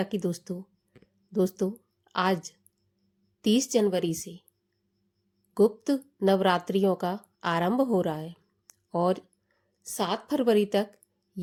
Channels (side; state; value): both; identical; correlation 1.00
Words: की दोस्तों आज 30 जनवरी से गुप्त नवरात्रियों का आरंभ हो रहा है और 7 फरवरी तक